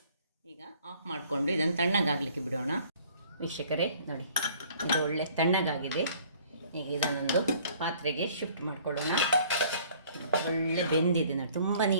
ಈಗ ಆಫ್ ಮಾಡಿಕೊಂಡು ಇದನ್ನು ತಣ್ಣಗಾಗಲಿಕ್ಕೆ ಬಿಡೋಣ. ವೀಕ್ಷಕರೇ ನೋಡಿ, ಇದು ಒಳ್ಳೆ ತಣ್ಣಗಾಗಿದೆ. ಈಗ ಇದನ್ನೊಂದು ಪಾತ್ರೆಗೆ ಶಿಫ್ಟ್ ಮಾಡಿಕೊಳ್ಳೋಣ. ಒಳ್ಳೆ ಬೆಂದಿದೆ ನೋಡಿ, ತುಂಬ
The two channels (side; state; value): both; inverted; correlation -0.56